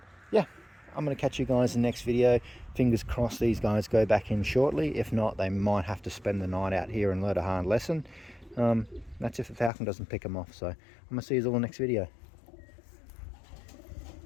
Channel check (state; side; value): drops out; right; at 9.7 s